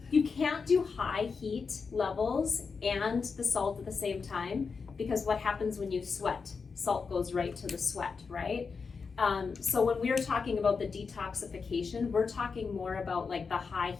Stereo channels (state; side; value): quieter; right; 5.2 dB